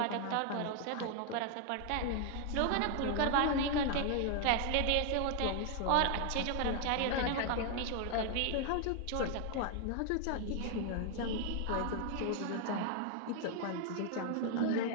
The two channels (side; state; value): both; different; correlation 0.00